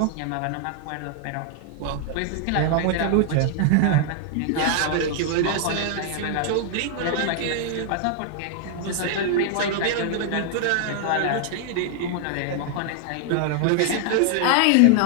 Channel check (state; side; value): different; both; correlation 0.00